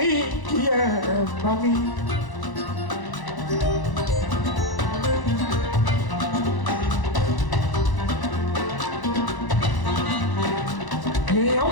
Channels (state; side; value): late; right; 1.0 ms